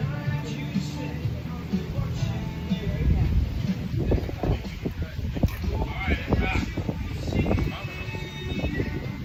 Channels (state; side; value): identical; both; correlation 1.00